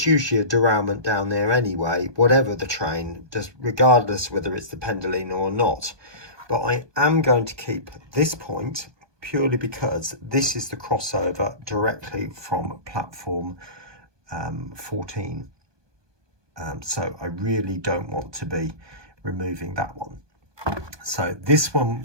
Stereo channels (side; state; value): left; late; 1.2 ms